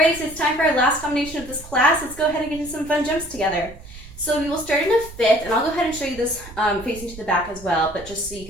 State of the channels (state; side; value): noise; right; rumble, 17 dB below the sound